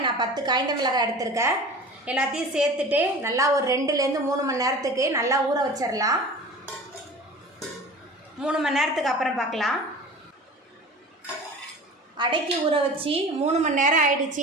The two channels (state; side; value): normal; both; correlation 0.38